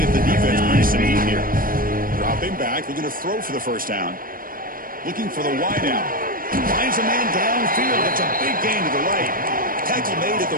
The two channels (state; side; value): late; left; 0.41 ms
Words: if the defense brings some heat here. Dropping back, looking to throw for the first down. Looking for the wide out. Finds a man downfield. That's a big gain to the right. Tackle made at the